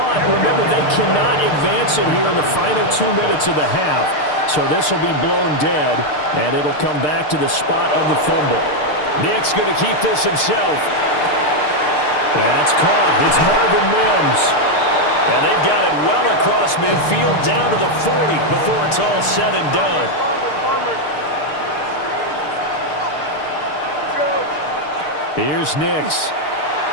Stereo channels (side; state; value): right; late; 6.7 ms